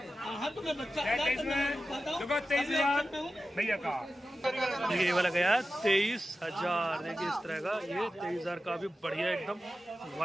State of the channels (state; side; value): normal; both; correlation 0.93